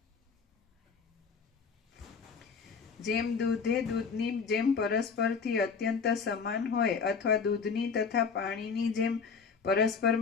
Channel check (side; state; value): right; quieter; 5.6 dB